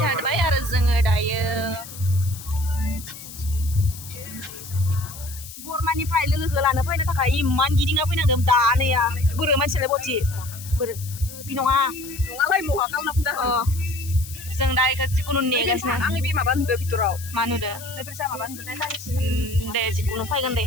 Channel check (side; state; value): left; noise; hiss, 14 dB below the sound